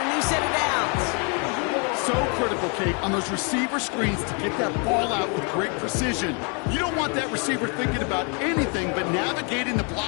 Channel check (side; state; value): right; quieter; 35.8 dB